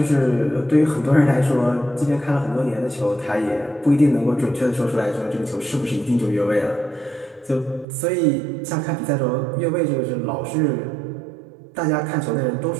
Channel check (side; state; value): left; drops out; at 7.9 s